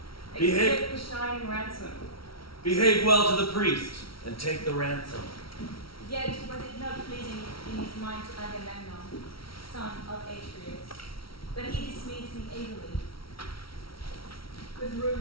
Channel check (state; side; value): late; right; 0.75 ms